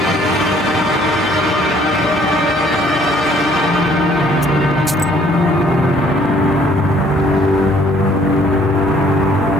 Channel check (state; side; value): normal; both; correlation 0.61